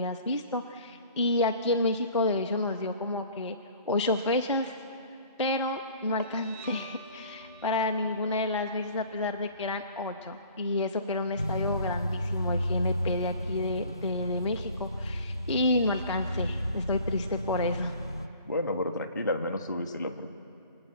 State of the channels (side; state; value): both; inverted; correlation -0.50